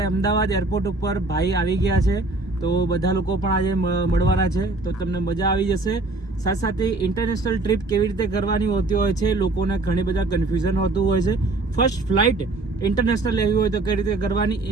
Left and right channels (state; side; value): quieter; left; 3.1 dB